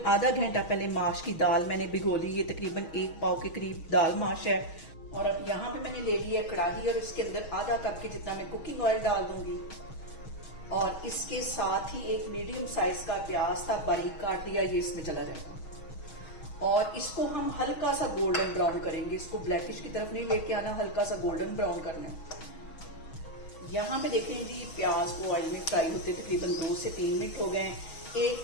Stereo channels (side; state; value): right; late; 6.3 ms